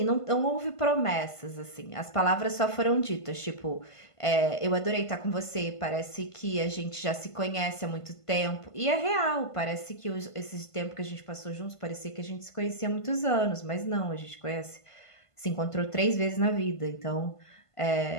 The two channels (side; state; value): right; late; 1.5 ms